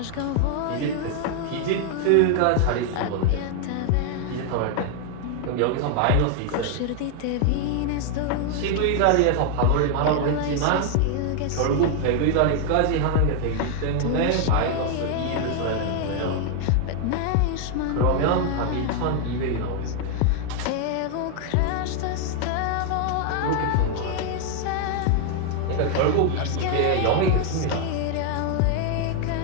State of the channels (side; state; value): both; different; correlation 0.00